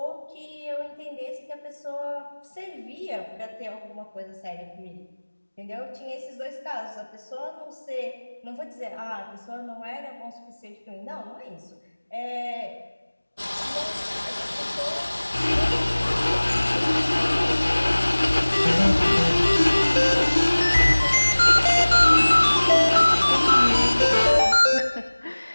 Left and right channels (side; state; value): both; inverted; correlation -1.00